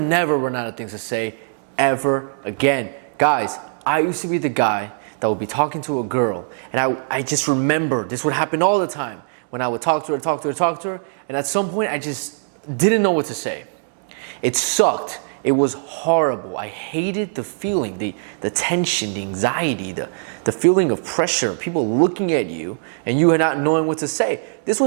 run out of things to say ever again. Guys, I used to be the guy that would be talking to a girl, and I just remember this would happen all the time when I would talk to her, and at some point I just didn't know what to say. It sucked. It was horrible. I hated the feeling, the tension, the anxiety, the feeling of pressure, people looking at you and you not knowing what to say. This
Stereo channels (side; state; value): left; silent; 65 dB below the other